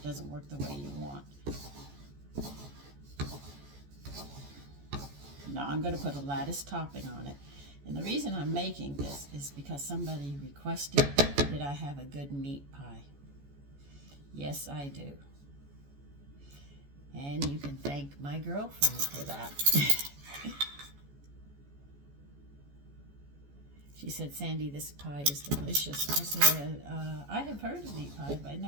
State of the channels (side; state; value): left; late; 14 ms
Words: doesn't work the way you want. Now I'm going to put a lattice topping on it. And the reason I'm making this is because somebody requested that I have a good meat pie. Yes, I do. And you can thank my girlfriend for that. She said, Sandy, this pie is delicious. I said, I have heard of meat pie, but I